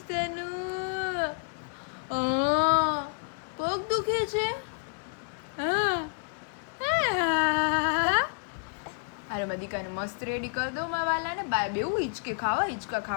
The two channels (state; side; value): quieter; right; 38.6 dB